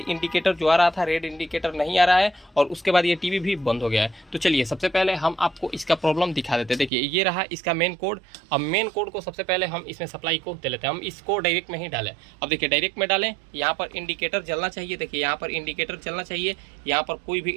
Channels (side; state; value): left; drops out; at 6.9 s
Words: इंडिकेटर जो आ रहा था, रेड इंडिकेटर नहीं आ रहा है और उसके बाद ये टीवी भी बंद हो गया है। तो चलिए, सबसे पहले हम आपको इसका प्रॉब्लम दिखा देते हैं। देखिए, ये रहा इसका मेन कोड। अब मेन कोड को सबसे पहले हम इसमें सप्लाई को दे लेते हैं। हम इसको डायरेक्ट में ही डालें। अब देखिए, डायरेक्ट में डालें, यहाँ पर इंडिकेटर जलना चाहिए। देखिए, यहाँ पर इंडिकेटर चलना चाहिए। यहाँ पर कोई भी